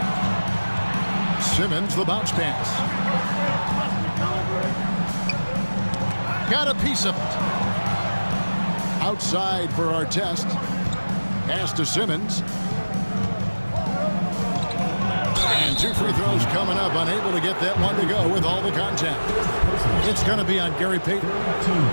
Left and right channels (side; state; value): both; inverted; correlation -1.00